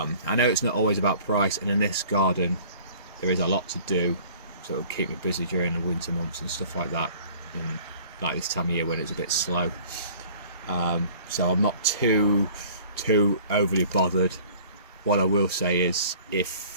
know it's not always about price, and in this garden there is a lot to do, so it'll keep me busy during the winter months and stuff like that, and like this time of year when it's a bit slow. So I'm not too overly bothered. What I will say is,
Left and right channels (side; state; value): both; inverted; correlation -0.50